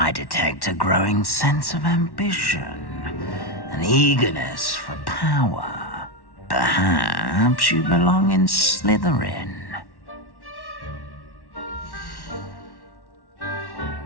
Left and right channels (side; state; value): right; late; 1.1 ms